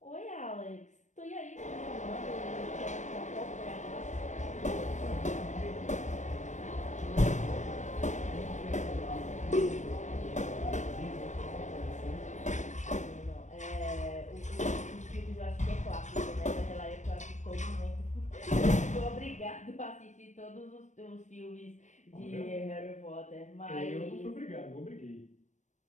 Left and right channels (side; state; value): right; late; 0.35 ms